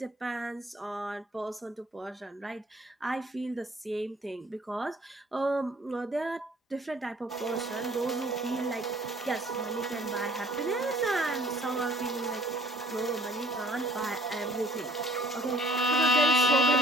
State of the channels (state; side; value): normal; both; correlation 0.56